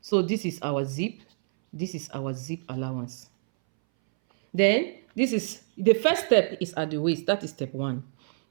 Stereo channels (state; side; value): silent; left; 60 dB below the other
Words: So this is our zip. This is our zip allowance. Then this is the first step is at the waist. That is step 1.